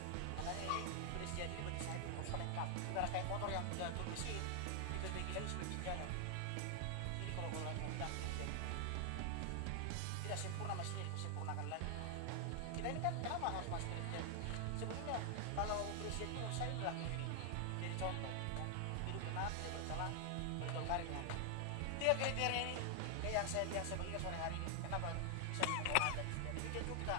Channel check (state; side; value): different; both; correlation 0.00